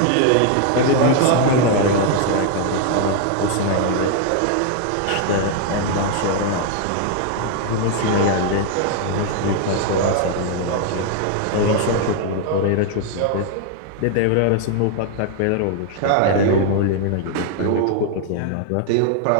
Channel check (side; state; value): both; different; correlation 0.00